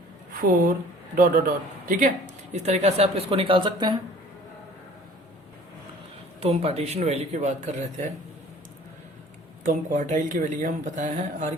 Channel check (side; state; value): both; normal; correlation 0.49